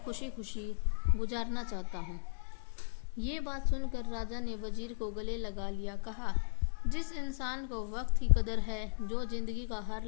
खुशी खुशी गुजारना चाहता हूँ। ये बात सुनकर राजा ने वजीर को गले लगा लिया। कहा, जिस इंसान को वक्त की कदर है, जो जिंदगी का हर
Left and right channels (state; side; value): silent; right; digital silence